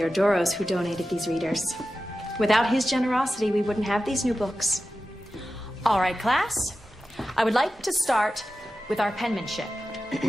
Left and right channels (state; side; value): normal; both; correlation 0.93